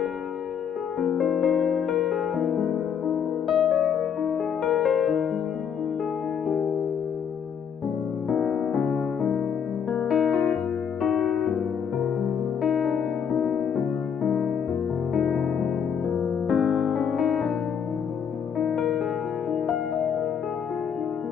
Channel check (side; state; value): right; quieter; 7.6 dB